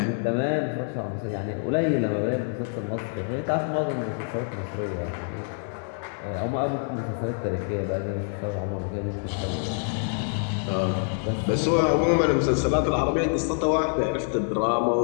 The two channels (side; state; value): right; silent; 61 dB below the other